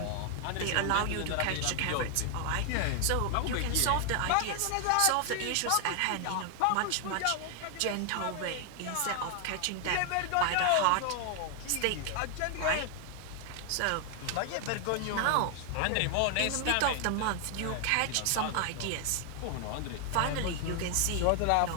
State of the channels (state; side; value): different; both; correlation 0.00